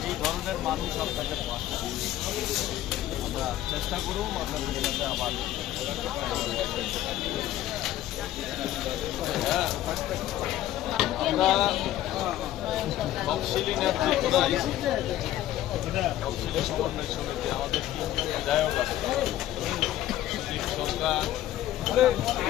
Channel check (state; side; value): quieter; right; 13.6 dB